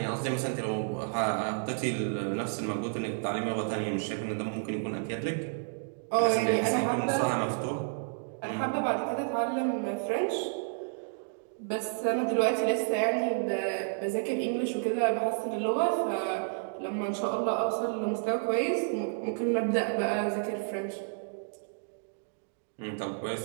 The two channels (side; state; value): left; silent; digital silence